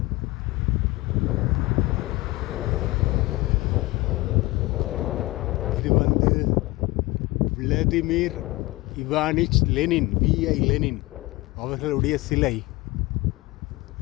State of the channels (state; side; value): quieter; right; 21.4 dB